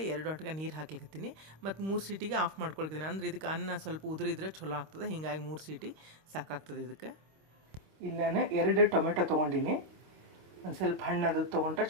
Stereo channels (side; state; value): left; late; 26 ms